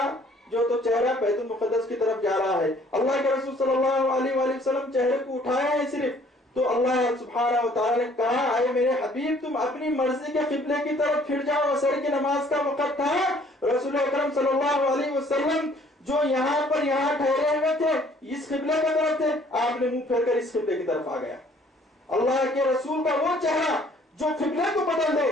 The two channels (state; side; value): normal; both; correlation 0.58